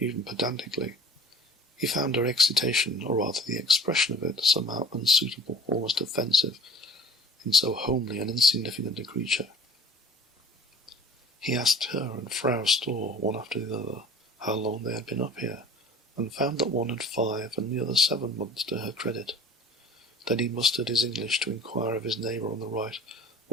pedantically. He found her excitation, or rather the expression of it, somehow unsuitable, almost offensive, in so homely and insignificant a creature. He asked her and Frau Storr, one after the other, how long they had been up here, and found that one had 5 and the other 7 months to her credit. Then he mustered his English to inquire of his neighbour on the right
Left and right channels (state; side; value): normal; both; correlation 0.46